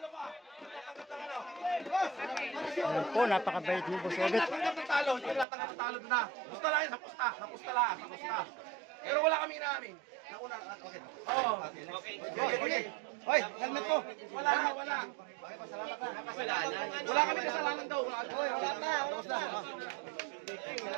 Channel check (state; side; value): drops out; left; at 5.5 s